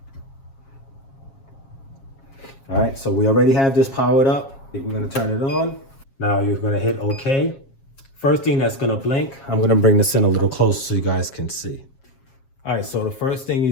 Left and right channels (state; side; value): late; right; 7.4 ms